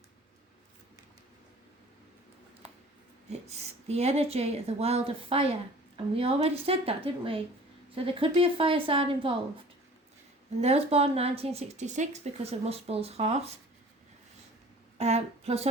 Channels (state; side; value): normal; both; correlation 0.47